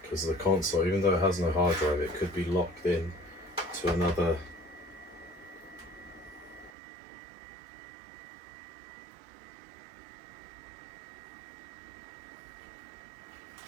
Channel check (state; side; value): drops out; left; at 6.7 s